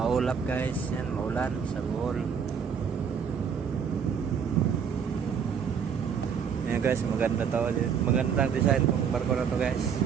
guys. Yan, maulan sa Bohol. Yan guys, maganda to. Magandang design tong barko na to guys.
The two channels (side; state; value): left; quieter; 7.1 dB